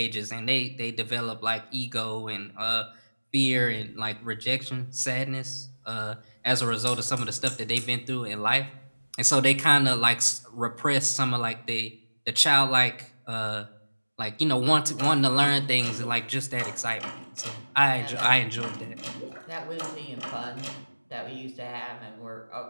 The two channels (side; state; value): both; inverted; correlation -1.00